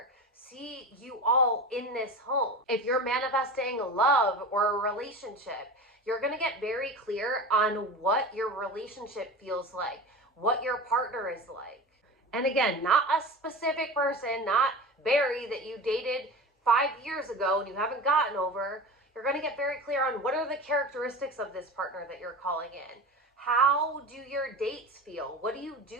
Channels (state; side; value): normal; both; correlation 0.31